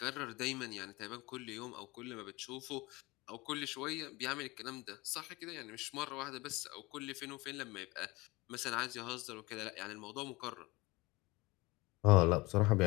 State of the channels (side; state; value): right; quieter; 22.8 dB